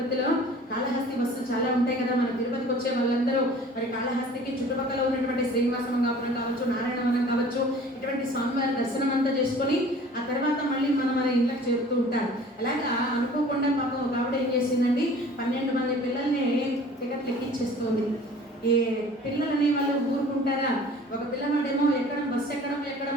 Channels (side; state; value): both; normal; correlation 0.47